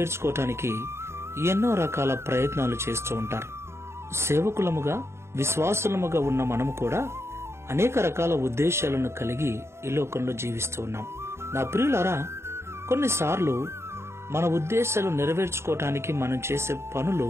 ఎన్నో రకాల ప్రయత్నాలు చేస్తూ ఉంటారు. సేవకులముగా విశ్వాసులముగా ఉన్న మనము కూడా అనేక రకాల ఉద్దేశాలను కలిగి ఈ లోకంలో జీవిస్తూ ఉన్నాం. నా ప్రియులారా, కొన్నిసార్లు మన ఉద్దేశాలు నెరవేర్చుకోవటానికి మనం చేసే పనులు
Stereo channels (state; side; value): late; left; 0.13 ms